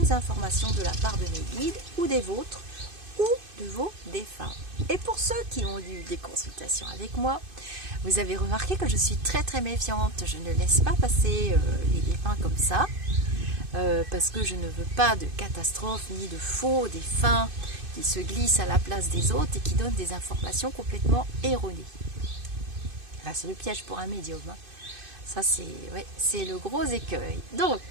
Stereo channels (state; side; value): late; left; 2.5 ms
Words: informations de la part de mes guides ou des vôtres ou de vos défunts. Et pour ceux qui ont eu des consultations avec moi, vous avez remarqué que je suis très méfiante. Je ne laisse pas passer les défunts comme ça parce que je ne veux pas de catastrophe ni de faux défunts qui se glissent à la place des autres et qui donnent des informations complètement erronées. Là, c'est le piège pour un médium. Hein. Ça, c'est le gros écueil. Donc,